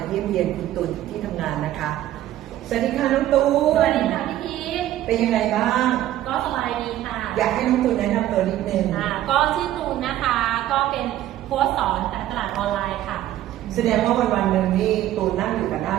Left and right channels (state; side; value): quieter; left; 13.3 dB